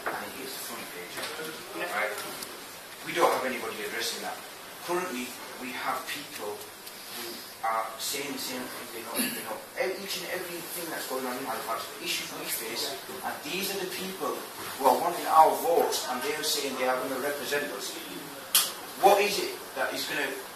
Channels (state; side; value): identical; both; correlation 1.00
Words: and it is the front page. Right? We don't have anybody addressing that. Currently, we have people who are saying the same thing, they know each and everything that's going on in Halifax, the issues we face, and these are the people who are wanting our votes, and they're saying they are going to represent us. What is it that is going to